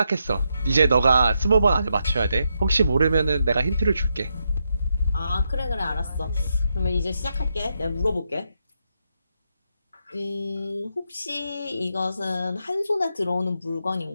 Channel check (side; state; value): both; inverted; correlation -0.82